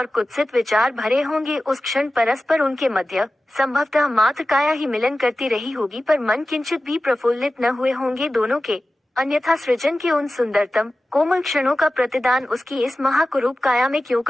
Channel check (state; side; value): normal; both; correlation 0.95